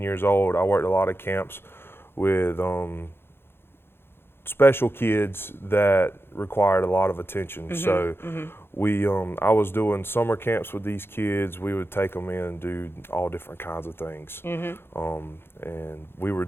years old. I worked a lot of camps with special kids that required a lot of attention. So I was doing summer camps with these kids. We would take them in and do all different kinds of things. And we were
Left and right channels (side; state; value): right; late; 0.11 ms